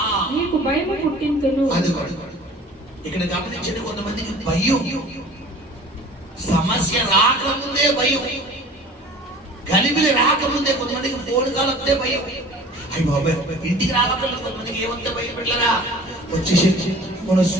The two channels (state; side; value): normal; both; correlation 0.45